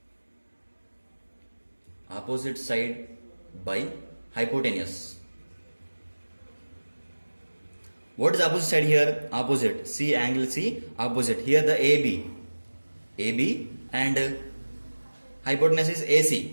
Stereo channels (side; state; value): both; inverted; correlation -1.00